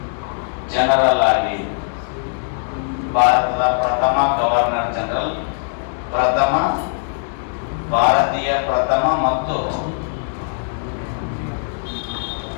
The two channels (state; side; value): silent; right; digital silence